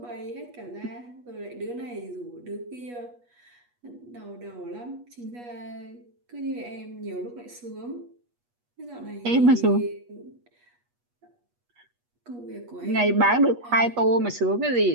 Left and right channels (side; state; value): left; late; 8.3 ms